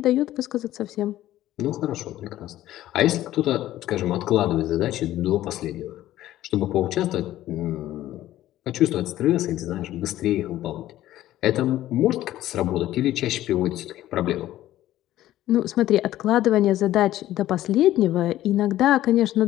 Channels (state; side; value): quieter; right; 14.1 dB